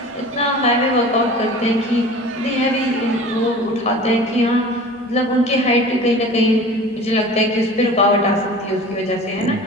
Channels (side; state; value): both; normal; correlation 0.40